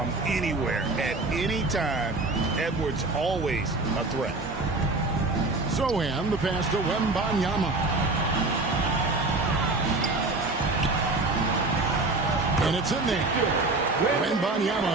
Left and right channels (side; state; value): left; quieter; 3.2 dB